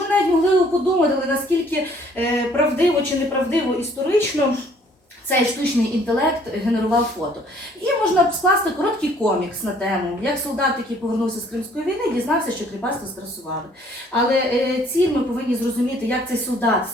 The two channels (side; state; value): both; normal; correlation 0.60